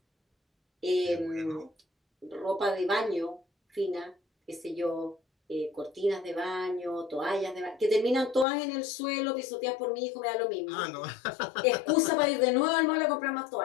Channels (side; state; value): right; drops out; at 8.5 s